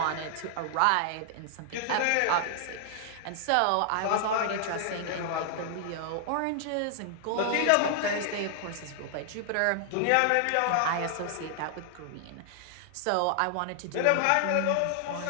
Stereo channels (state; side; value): different; both; correlation 0.00